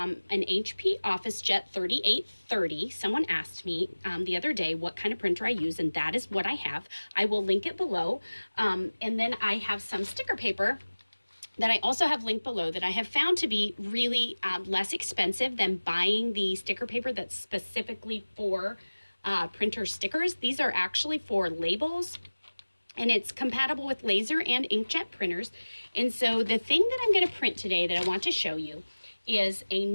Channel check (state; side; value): inverted; both; correlation -1.00